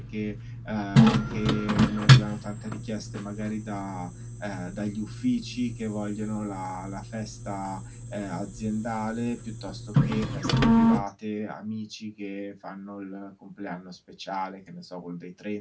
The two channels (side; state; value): both; identical; correlation 1.00